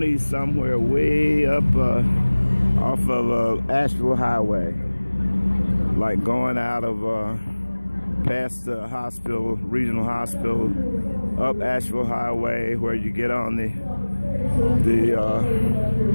somewhere way up off of Asheville Highway, like going out of past the hospital, regional hospital, up Asheville Highway, where you get on the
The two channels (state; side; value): inverted; both; correlation -1.00